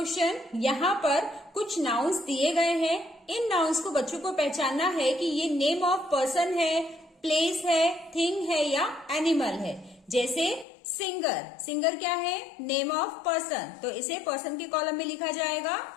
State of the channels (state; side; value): drops out; right; at 10.7 s